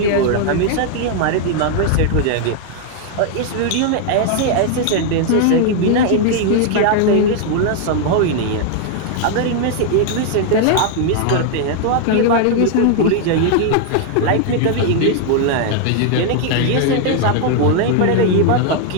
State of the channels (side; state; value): both; different; correlation 0.00